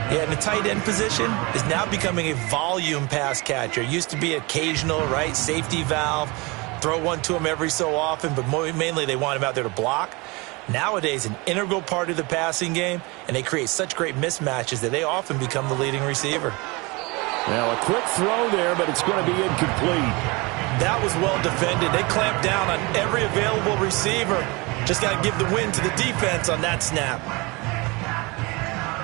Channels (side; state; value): left; quieter; 26.0 dB